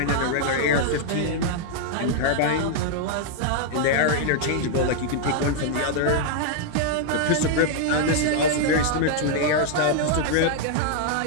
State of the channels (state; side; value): different; both; correlation -0.01